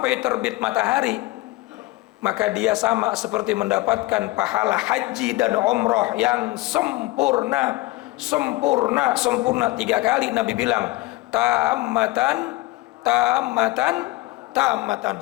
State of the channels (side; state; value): right; quieter; 20.2 dB